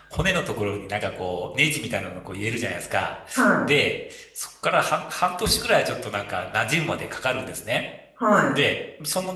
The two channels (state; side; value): identical; both; correlation 1.00